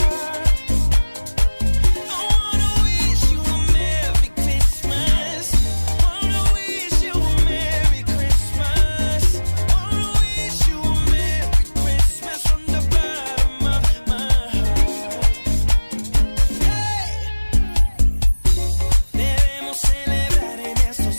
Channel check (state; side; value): inverted; both; correlation -1.00